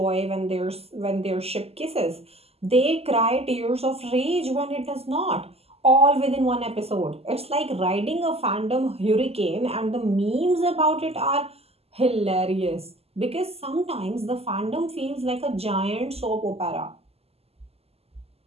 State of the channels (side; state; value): left; late; 0.29 ms